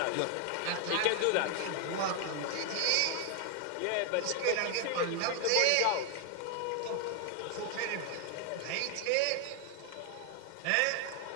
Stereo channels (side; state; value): both; different; correlation 0.00